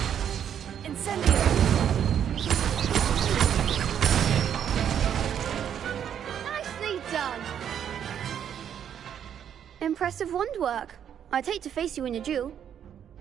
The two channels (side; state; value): left; quieter; 9.1 dB